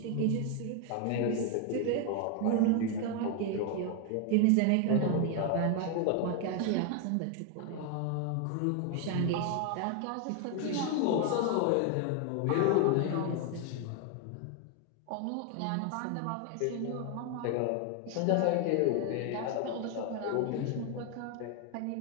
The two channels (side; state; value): both; different; correlation 0.01